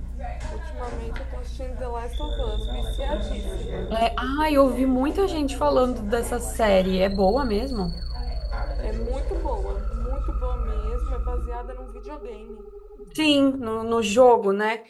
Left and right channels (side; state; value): both; identical; correlation 1.00